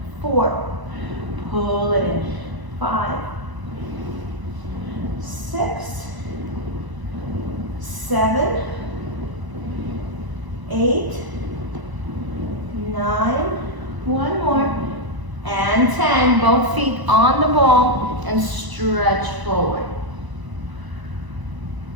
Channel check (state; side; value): late; left; 1.0 ms